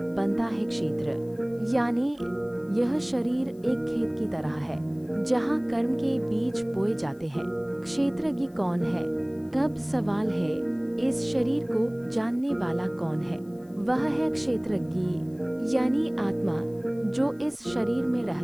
बनता है क्षेत्र। यानी यह शरीर एक खेत की तरह है जहाँ कर्म के बीज बोए जाते हैं। क्षेत्रज्ञ कौन है? तब सवाल है, इस शरीर को जानने वाला कौन है? वह है क्षेत्रज्ञ यानी आत्मा, जो इस शरीर में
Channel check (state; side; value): noise; left; hiss, 29 dB below the sound